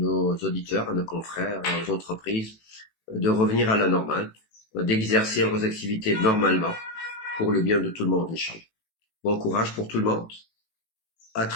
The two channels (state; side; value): late; right; 18 ms